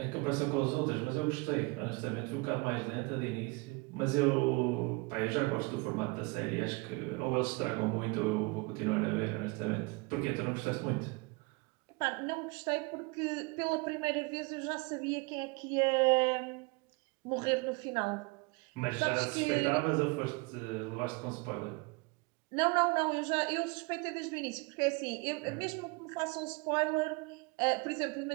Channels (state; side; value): quieter; left; 27.5 dB